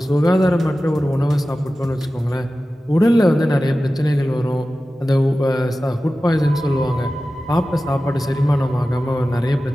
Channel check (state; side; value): normal; both; correlation 0.95